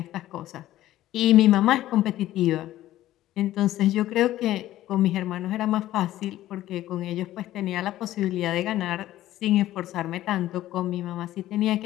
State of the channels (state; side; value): quieter; right; 14.3 dB